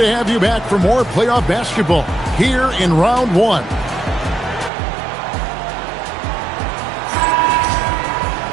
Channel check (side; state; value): left; drops out; at 4.7 s